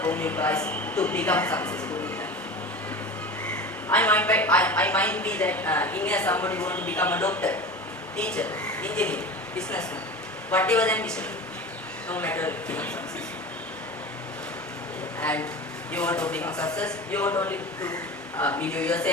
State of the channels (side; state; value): both; normal; correlation 0.32